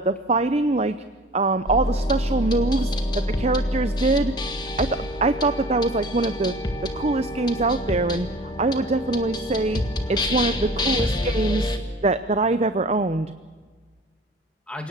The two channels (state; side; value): normal; both; correlation 0.43